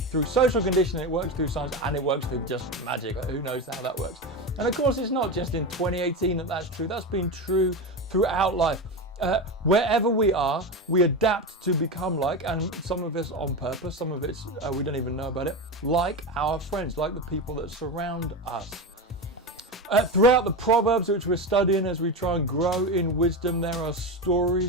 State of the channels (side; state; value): both; normal; correlation 0.19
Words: through social conditioning, it works through science, and it works through just magic. Who knows how that works? And of course, it's not just in 2018 that's true. That's been true throughout life. Wherever we are, we adapt to become like, and some of us on purpose, some of it's we don't even know about it, like our friends, like the people that surround us. Throughout the Proverbs, which we're studying as we try and grow in wisdom, there are